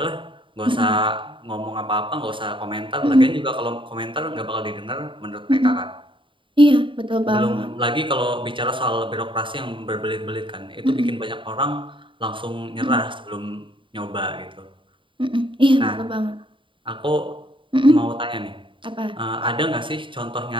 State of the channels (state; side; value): late; left; 0.24 ms